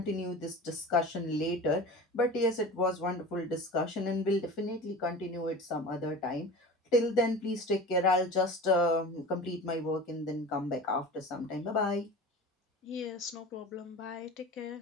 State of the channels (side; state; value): both; normal; correlation 0.35